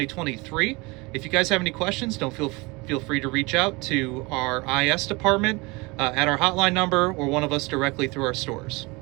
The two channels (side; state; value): left; quieter; 25.5 dB